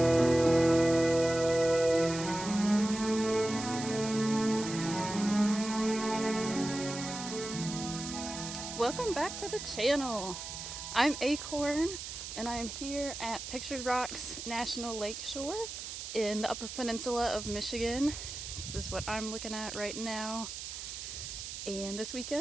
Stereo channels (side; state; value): right; noise; hiss, 8 dB below the sound